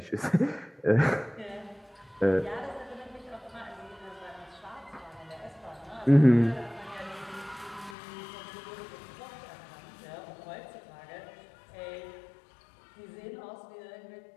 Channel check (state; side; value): drops out; right; at 8.0 s